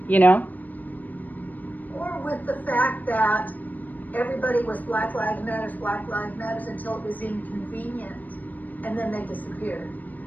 Or with the fact that everybody was Black Lives Matter until it was inconvenient, and then they disappeared.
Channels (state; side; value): late; right; 0.082 ms